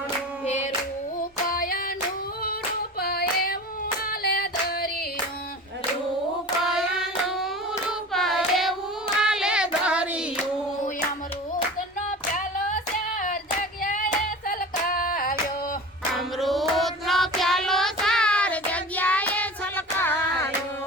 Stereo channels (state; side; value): normal; both; correlation 0.35